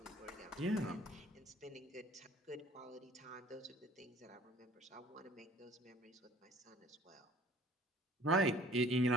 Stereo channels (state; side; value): normal; both; correlation 0.51